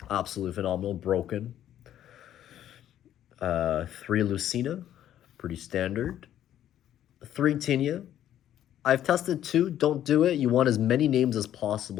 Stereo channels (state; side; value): quieter; right; 11.4 dB